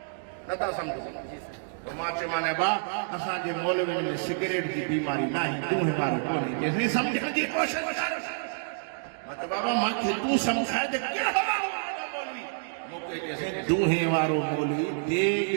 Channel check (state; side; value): silent; left; digital silence